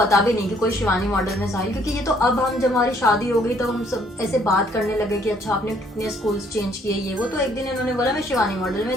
भी नहीं कि कोई शिवानी मॉडल में साहिल, क्योंकि ये तो अब हम जब हमारी शादी हो गई तो हम सब ऐसे बात करने लगे कि अच्छा आपने कितने स्कूल्स चेंज किए ये वो। तो एक दिन इन्होंने बोला मैं शिवानी मॉडल में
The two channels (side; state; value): both; normal; correlation 0.65